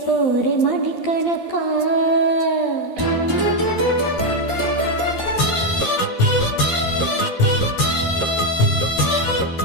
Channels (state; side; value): late; right; 12 ms